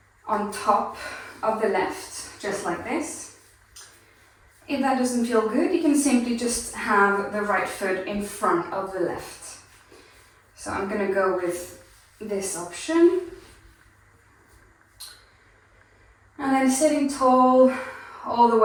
on top of the left, just like this. If that doesn't feel good, you can simply just have the right foot in front of the left. So I'm going to go with this option. And then sitting tall all the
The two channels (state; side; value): identical; both; correlation 1.00